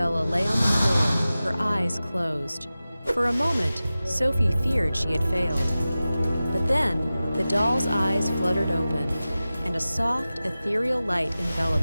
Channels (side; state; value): both; inverted; correlation -0.96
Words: lay on the floor, her eyes closed. For a moment, Sophie feared she had failed. But then, the doll's eyes fluttered open, and a soft, ethereal light